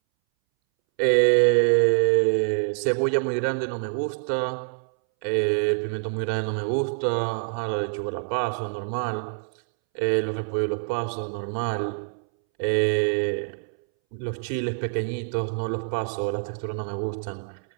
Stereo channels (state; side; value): silent; left; 61 dB below the other